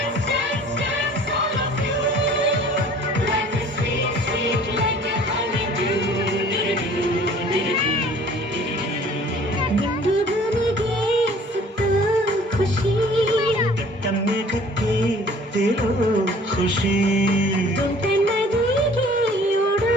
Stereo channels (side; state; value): both; normal; correlation 0.51